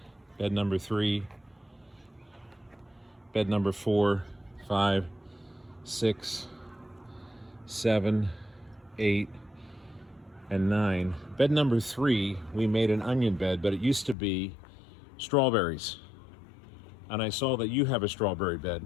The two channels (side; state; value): right; drops out; at 14.2 s